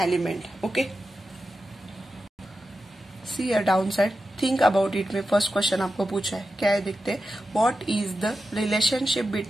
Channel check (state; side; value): normal; both; correlation 0.91